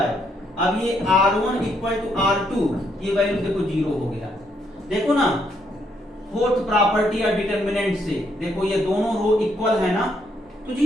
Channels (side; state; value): both; normal; correlation 0.74